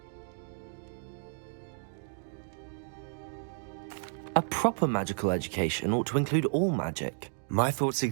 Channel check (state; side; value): silent; left; digital silence